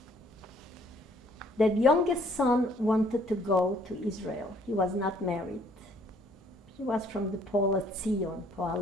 That youngest son wanted to go to Israel. He was not married. He was from the Poalei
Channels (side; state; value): both; normal; correlation 0.62